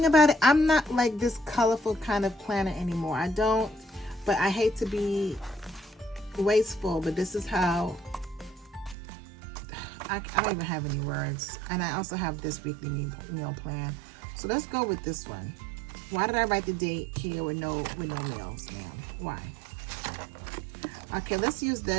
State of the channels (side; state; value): left; drops out; at 9.0 s